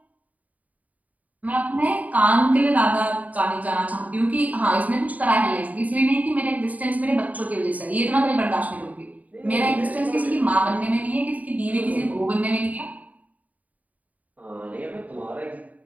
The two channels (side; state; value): left; late; 0.073 ms